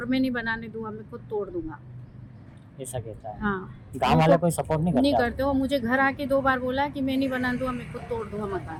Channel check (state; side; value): identical; both; correlation 1.00